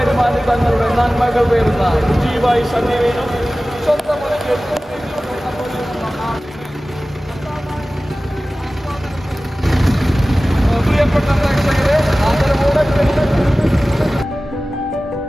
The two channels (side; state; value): both; normal; correlation 0.97